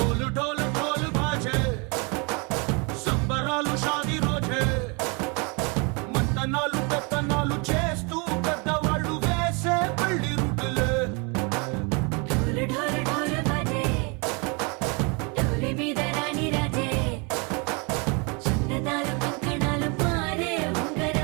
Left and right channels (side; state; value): left; quieter; 31.6 dB